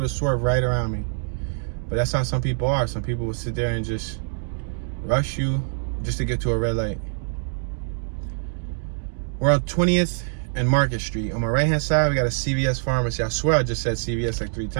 to swerve right around me. But that's how some people are. Some people will sit there and just rush you just to get to a red light. We're on 20th and Market Street. On my right-hand side, we got a CVS pharmacy. I swear I just said CVS like 3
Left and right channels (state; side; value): silent; left; digital silence